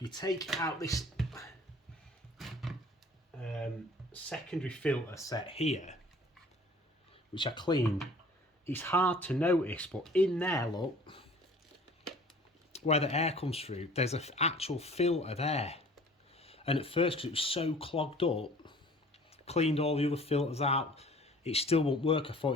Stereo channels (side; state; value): both; normal; correlation 0.49